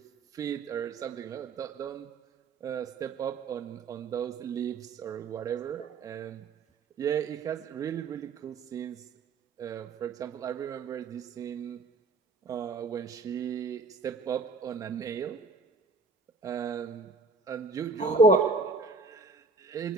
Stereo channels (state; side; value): quieter; left; 3.9 dB